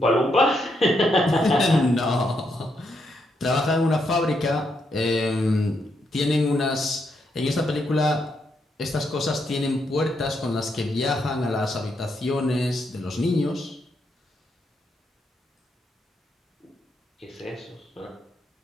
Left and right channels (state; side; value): normal; both; correlation 0.79